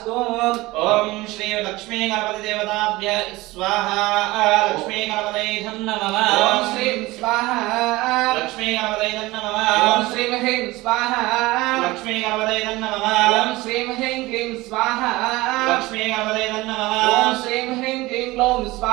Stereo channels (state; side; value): quieter; left; 20.1 dB